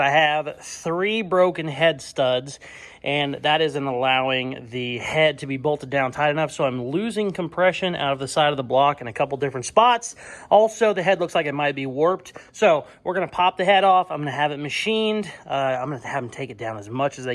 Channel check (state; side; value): identical; both; correlation 1.00